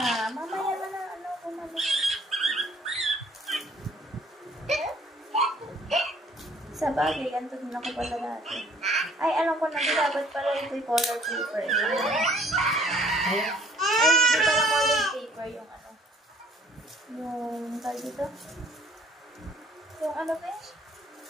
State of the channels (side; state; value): both; normal; correlation 0.58